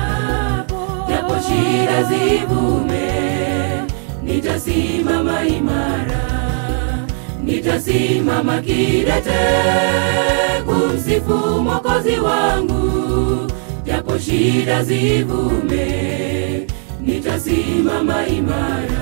japo shida zivume. Nitasimama imara, nitasimama kidete kumsifu Mwokozi wangu, japo shida zivume. Nitasimama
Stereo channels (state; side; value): silent; left; 55 dB below the other